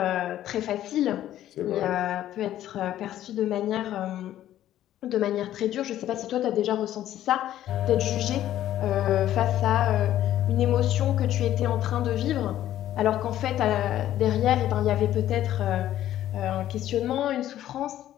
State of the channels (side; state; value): right; quieter; 12.6 dB